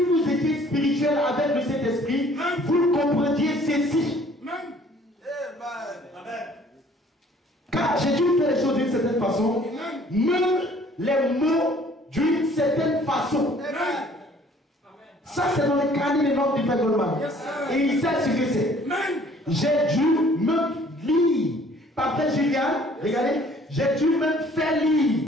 étiez spirituels avec le Saint-Esprit, vous comprendiez ceci. Car j'ai dû faire les choses d'une certaine façon, même les mots d'une certaine façon. Ça, c'est dans le carnet des notes du Frère Goldman. Et il sait ce que c'est. J'ai dû même lire. Par Frère Julian, regardez, j'ai dû même faire lire.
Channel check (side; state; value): both; normal; correlation 0.56